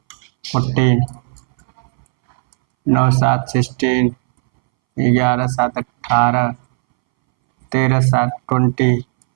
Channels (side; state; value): left; silent; 66 dB below the other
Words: 14 9 7 16 11 7 18 13 7 20